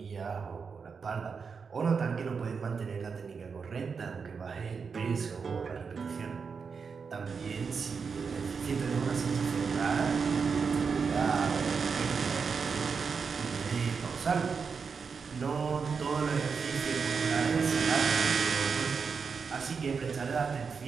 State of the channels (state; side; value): quieter; left; 5.6 dB